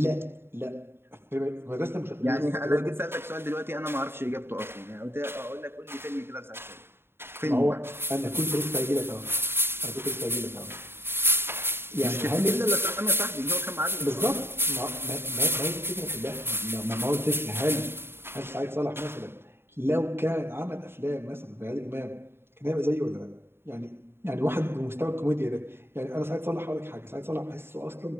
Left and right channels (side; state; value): left; late; 0.11 ms